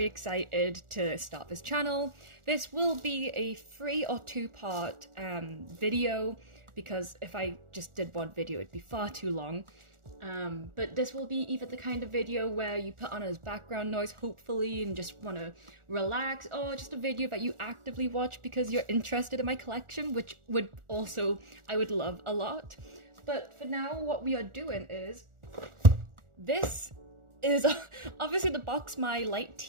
excited to start this channel. This will be a 3 or 2-part video, because if I just did one video it'd be far too long. But this will be either the kind of video where you put on as background noise, hopefully, and just want to relax, or just a video that you actively watch because you're interested in my collection, which I would love a lot. But for now, what we are doing is, this is obviously the box my light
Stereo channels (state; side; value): late; left; 1.4 ms